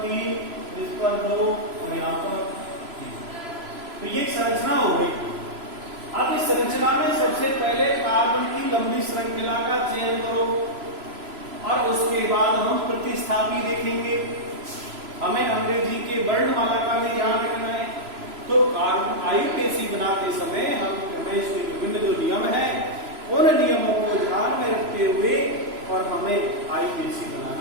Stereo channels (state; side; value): late; left; 3.0 ms